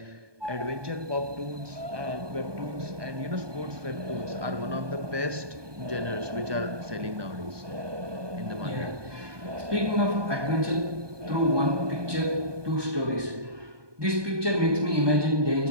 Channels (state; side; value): late; left; 1.2 ms